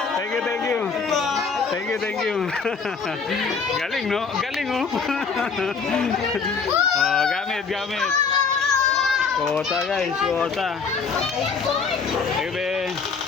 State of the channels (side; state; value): right; quieter; 5.3 dB